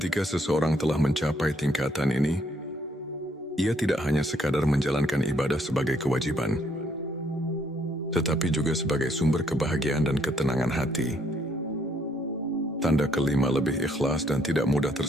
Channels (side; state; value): both; normal; correlation 0.69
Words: seseorang telah mencapai tingkatan ini, ia tidak hanya sekadar menjalankan ibadah sebagai kewajiban, tetapi juga sebagai sumber kebahagiaan dan ketenangan hati. Tanda kelima, lebih ikhlas dan tidak mudah